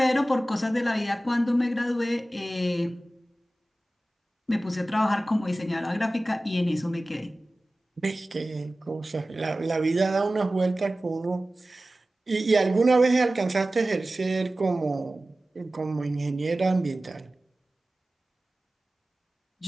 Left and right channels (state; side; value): normal; both; correlation 0.96